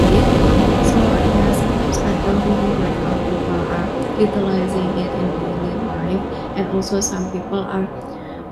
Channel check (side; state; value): both; identical; correlation 1.00